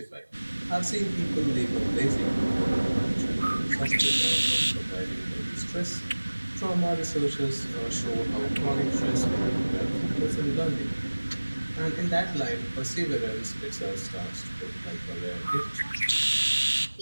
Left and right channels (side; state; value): both; inverted; correlation -1.00